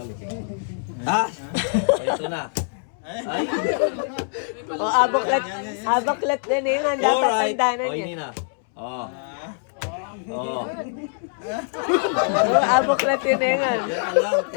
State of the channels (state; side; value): silent; right; 63 dB below the other